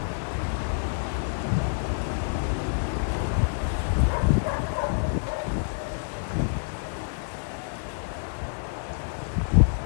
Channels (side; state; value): right; silent; digital silence